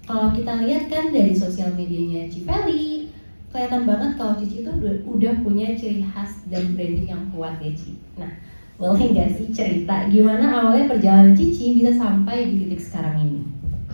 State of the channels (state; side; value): inverted; both; correlation -1.00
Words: Kalau kita lihat kan dari sosial medianya Cifeli, kelihatan banget kalau Cici itu udah punya ciri khas dan branding yang kuat ya Ci. Nah, boleh nggak sih cerita gimana awalnya perjalanan Cici bisa sampai di titik sekarang ini?